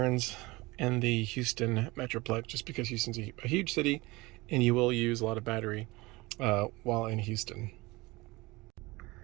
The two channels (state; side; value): quieter; left; 22.4 dB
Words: in the Houston Metroplex, just because Houston's a huge city and you will use a lot of battery while in Houston.